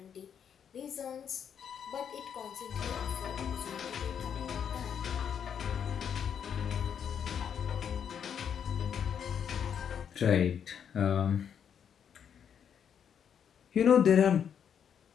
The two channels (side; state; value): right; quieter; 8.1 dB